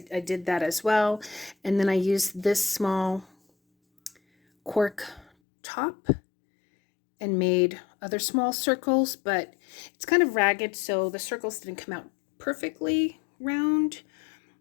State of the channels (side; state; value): right; drops out; at 5.2 s